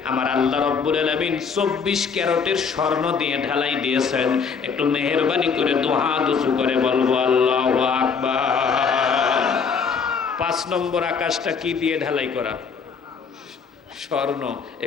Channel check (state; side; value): quieter; right; 5.8 dB